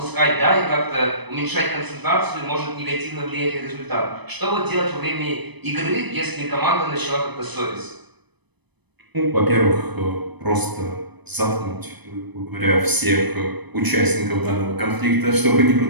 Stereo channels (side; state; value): left; late; 0.99 ms